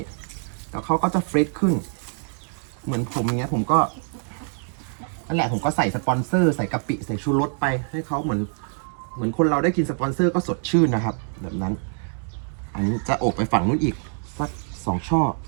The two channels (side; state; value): left; silent; 58 dB below the other